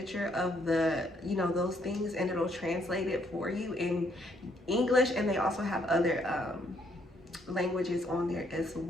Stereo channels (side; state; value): both; normal; correlation 0.70